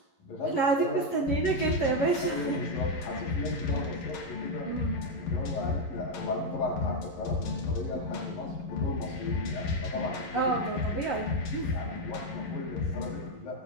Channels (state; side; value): late; right; 11 ms